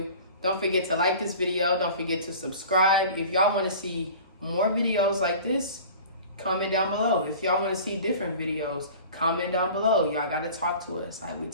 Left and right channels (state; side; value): inverted; both; correlation -0.41